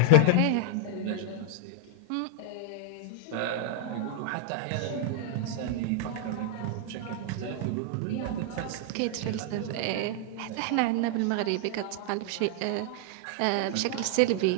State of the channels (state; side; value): different; both; correlation 0.00